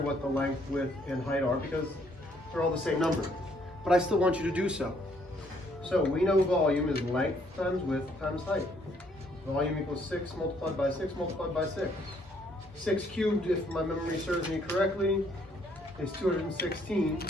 what the length, width, and height are because they're all the same number. But I still want you to do so. So we know volume is length times width times height. Volume equals 6 multiplied by 6 multiplied by 6. 6 cubed, if my memory serves me correctly, is 216.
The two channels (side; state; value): both; normal; correlation 0.67